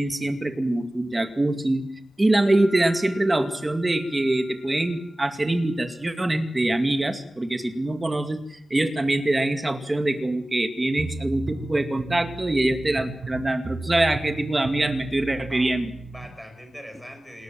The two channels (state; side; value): normal; both; correlation 0.97